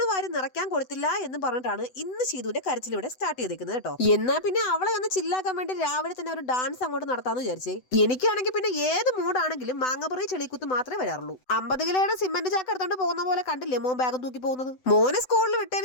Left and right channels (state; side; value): late; right; 7.9 ms